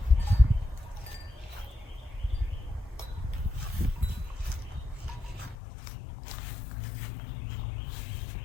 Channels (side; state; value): right; drops out; at 5.6 s